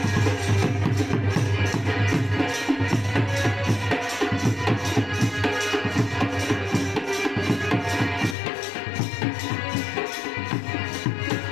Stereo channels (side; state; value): right; drops out; at 8.3 s